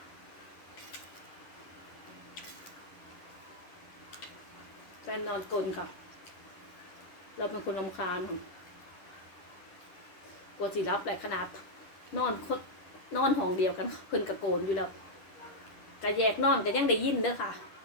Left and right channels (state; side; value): late; right; 10 ms